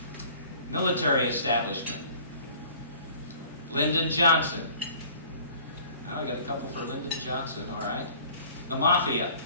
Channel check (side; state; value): both; inverted; correlation -0.50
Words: Military establishment. Lyndon Johnson. Oh, we got a couple for Lyndon Johnson, all right. The mafia.